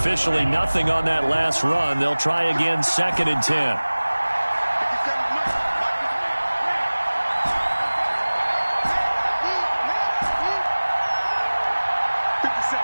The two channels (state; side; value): inverted; both; correlation -1.00